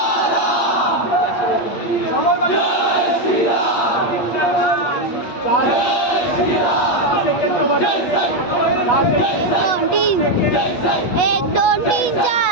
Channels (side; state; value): right; late; 8.6 ms